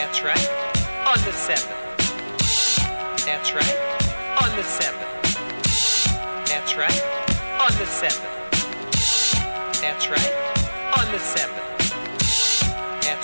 right, on the 7. That's right, on the 7. That's right, on the 7. That's right, on the 7.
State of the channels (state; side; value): inverted; both; correlation -1.00